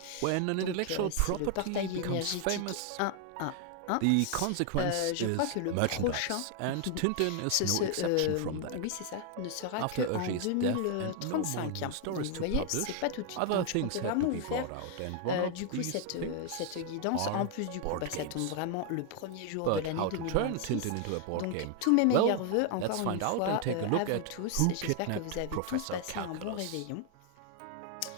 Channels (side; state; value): both; different; correlation 0.00